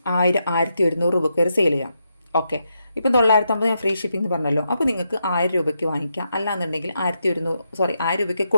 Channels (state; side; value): inverted; both; correlation -0.83